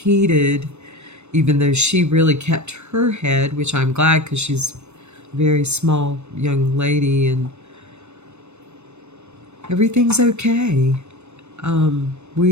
even though she really kept her head, which I'm glad, because she's a very small young lady, and everything's okay.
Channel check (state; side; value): late; left; 0.82 ms